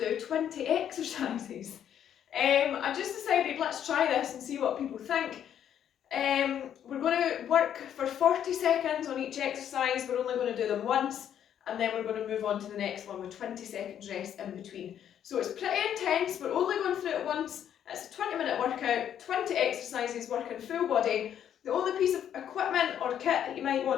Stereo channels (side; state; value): right; quieter; 9.7 dB